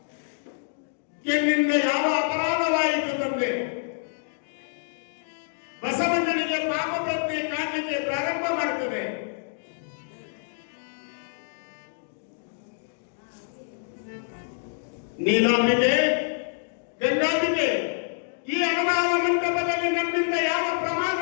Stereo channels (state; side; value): silent; right; digital silence